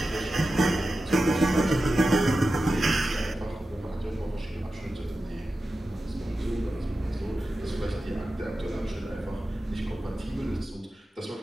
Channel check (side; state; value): both; normal; correlation 0.92